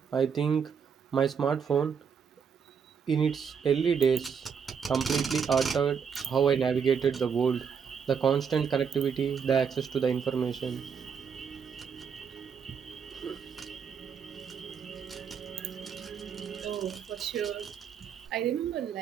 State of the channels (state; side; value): quieter; left; 6.7 dB